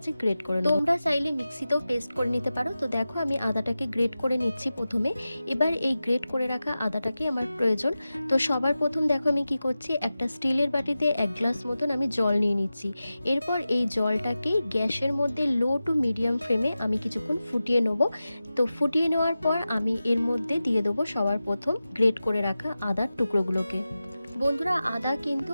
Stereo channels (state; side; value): inverted; both; correlation -0.94